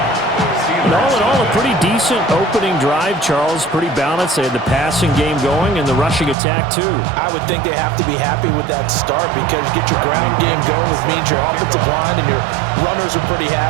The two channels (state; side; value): drops out; left; at 6.4 s